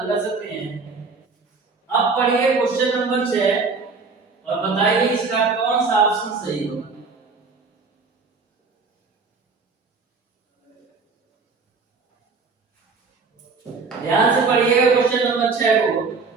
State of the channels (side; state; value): left; quieter; 4.5 dB